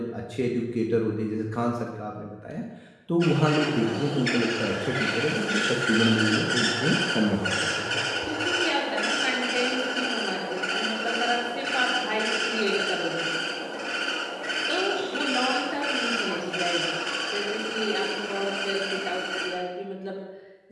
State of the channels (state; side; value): identical; both; correlation 1.00